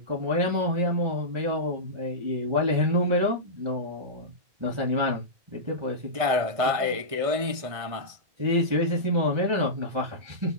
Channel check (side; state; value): left; late; 1.6 ms